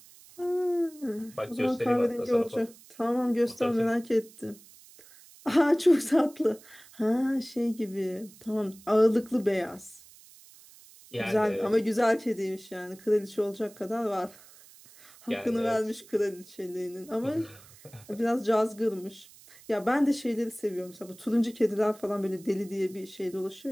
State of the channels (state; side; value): noise; right; hiss, 23 dB below the sound